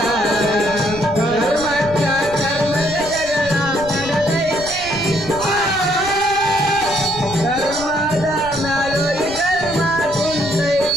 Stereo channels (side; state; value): right; noise; rumble, 15 dB below the sound